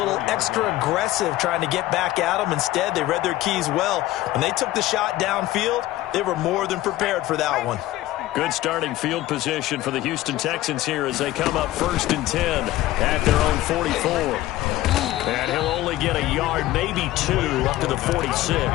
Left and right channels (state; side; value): quieter; right; 15.9 dB